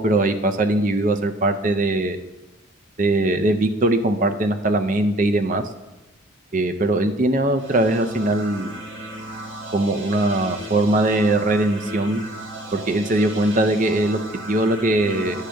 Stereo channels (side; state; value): both; normal; correlation 0.54